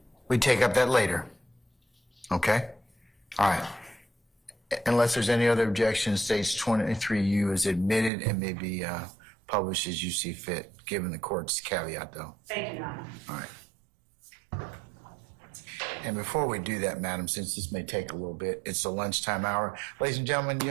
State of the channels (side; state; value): left; drops out; at 8.1 s